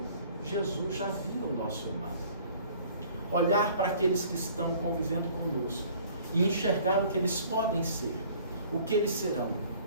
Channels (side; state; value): both; inverted; correlation -0.53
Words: Jesus já via o nosso irmão. Olhar para aqueles que estão convivendo conosco e enxergar o que eles podem ser, o que eles serão.